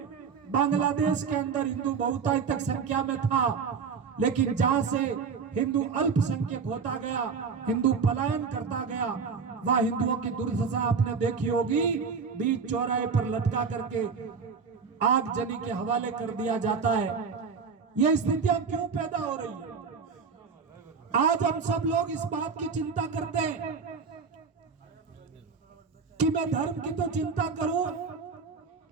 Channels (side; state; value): left; quieter; 5.6 dB